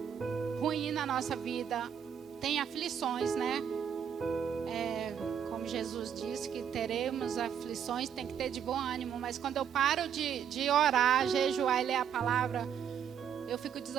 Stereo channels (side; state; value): left; quieter; 8.4 dB